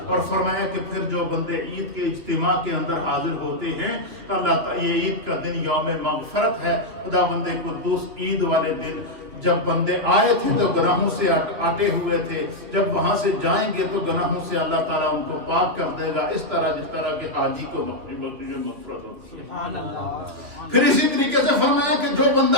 اور فرمایا کہ پھر جو بندے عید کے اجتماع کے اندر حاضر ہوتے ہیں تو اللہ تعالیٰ یہ عید کا دن یوم مغفرت ہے۔ خدا بندے قدوس عید والے دن جب بندے آئے تھے تو گناہوں سے آٹے ہوئے تھے، جب وہاں سے جائیں گے تو گناہوں سے اللہ تعالیٰ ان کو پاک کر دے گا، اس طرح جس طرح کہ حاجی کو بخشش مغفرت ہوتی ہے۔ پھر اسی طریقے سے فرمایا کہ جو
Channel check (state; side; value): late; left; 2.9 ms